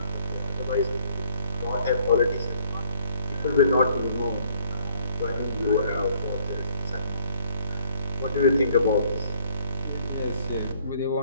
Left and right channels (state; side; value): inverted; both; correlation -0.62